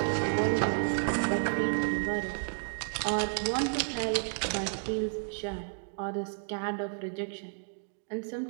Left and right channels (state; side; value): silent; left; digital silence